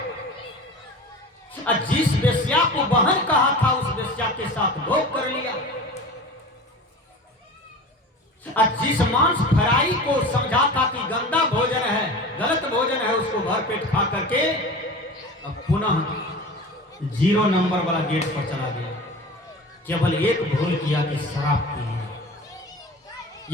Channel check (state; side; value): normal; both; correlation 0.35